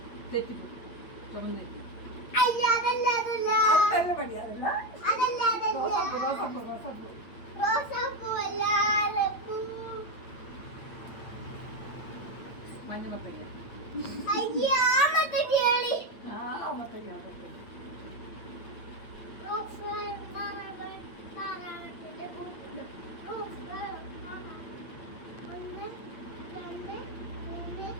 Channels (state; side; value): late; right; 8.7 ms